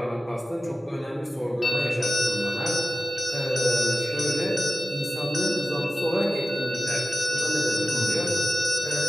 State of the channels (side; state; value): both; normal; correlation 0.93